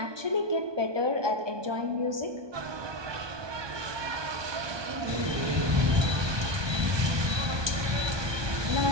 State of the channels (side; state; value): left; late; 1.2 ms